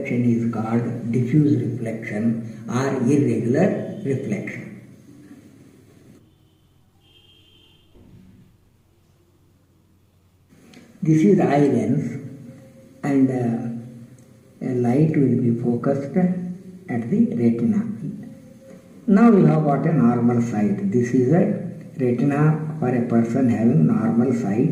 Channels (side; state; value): both; identical; correlation 1.00